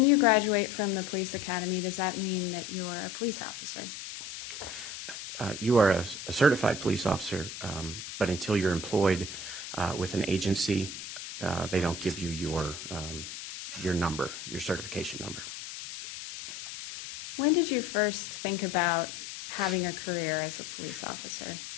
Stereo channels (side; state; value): left; noise; hiss, 9 dB below the sound